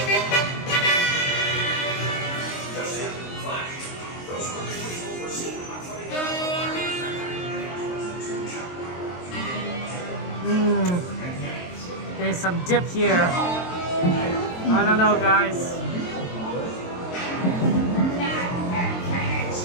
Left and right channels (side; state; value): right; late; 22 ms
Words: There's some dip here. I don't know, guys.